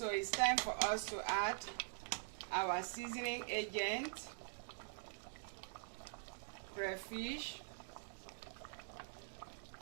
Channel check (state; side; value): silent; left; digital silence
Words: it's time for us to add our seasoning agent, crayfish,